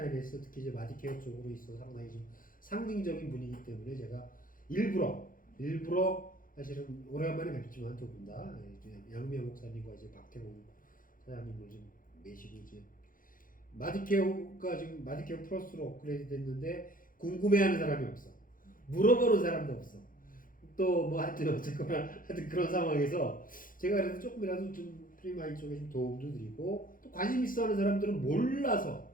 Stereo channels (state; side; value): late; right; 0.40 ms